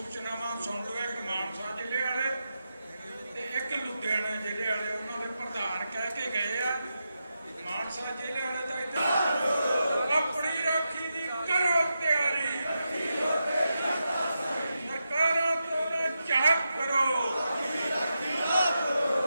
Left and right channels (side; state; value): both; inverted; correlation -0.87